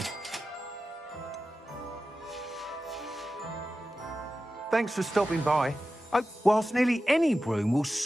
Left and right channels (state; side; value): normal; both; correlation 0.93